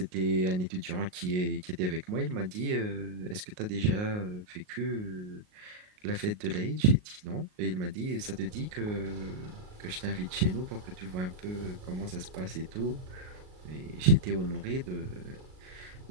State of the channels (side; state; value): left; late; 38 ms